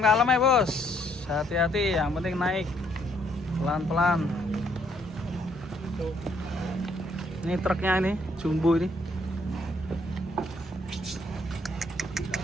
ya bos, hati-hati, yang penting naik pelan-pelan. Ini truknya ini jumbo ini.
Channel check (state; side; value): normal; both; correlation 0.69